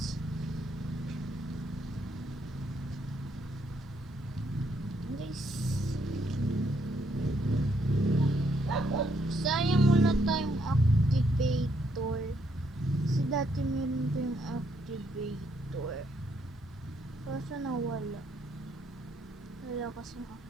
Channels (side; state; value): both; normal; correlation 0.73